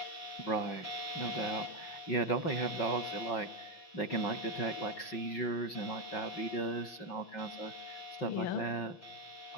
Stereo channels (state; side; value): late; right; 5.4 ms